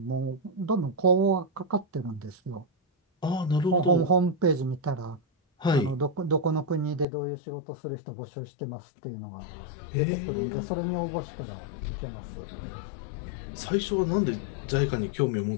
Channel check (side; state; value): right; drops out; at 7.1 s